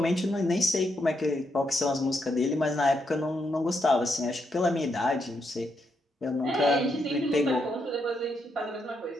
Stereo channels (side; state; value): both; normal; correlation 0.80